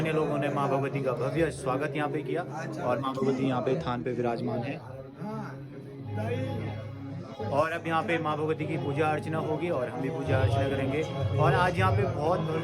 लोगों ने मां भगवती का भव्य स्वागत यहाँ पे किया और मां भगवती यहाँ पे थान पे विराजमान है। और अब यहाँ पे मां भगवती की पूजा अर्चना होगी और हम भी पूजा अर्चना करेंगे। और आज यहाँ पे बहुत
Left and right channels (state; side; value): identical; both; correlation 1.00